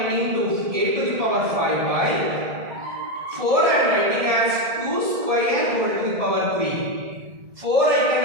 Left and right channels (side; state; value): left; late; 1.7 ms